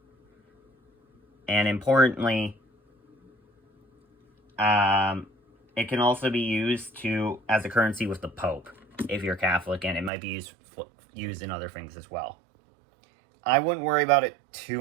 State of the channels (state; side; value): drops out; left; at 10.1 s